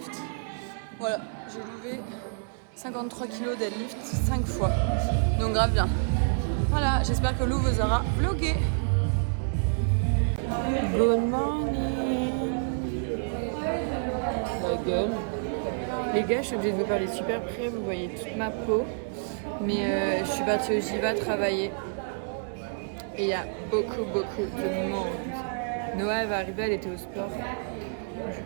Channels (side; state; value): left; silent; 59 dB below the other